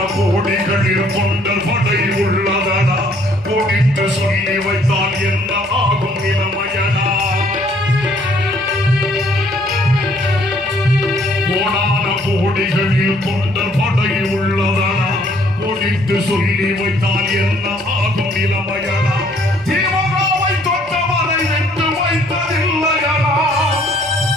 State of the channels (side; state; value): both; normal; correlation 0.63